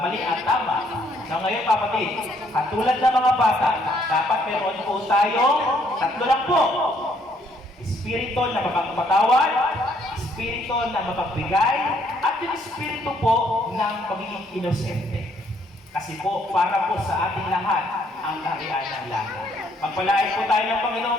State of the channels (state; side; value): normal; both; correlation 0.68